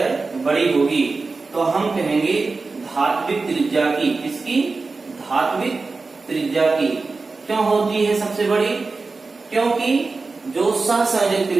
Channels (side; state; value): left; quieter; 4.0 dB